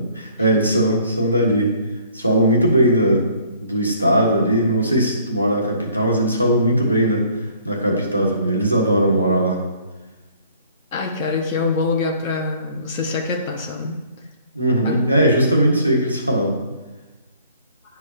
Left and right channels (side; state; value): both; inverted; correlation -0.57